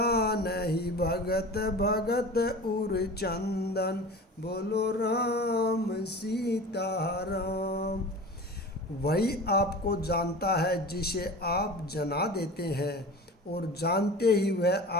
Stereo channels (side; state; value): both; normal; correlation 0.35